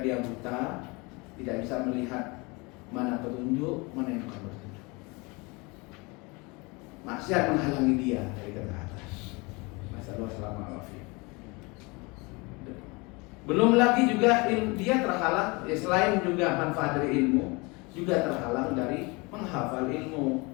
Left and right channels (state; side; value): quieter; right; 27.0 dB